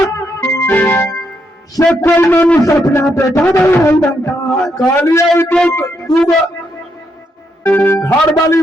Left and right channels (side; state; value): both; normal; correlation 0.78